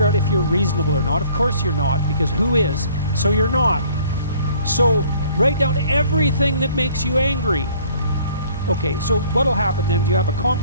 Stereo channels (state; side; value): inverted; both; correlation -0.55